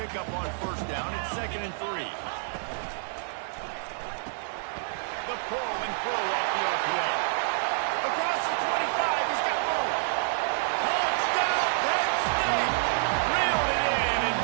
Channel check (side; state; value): left; silent; digital silence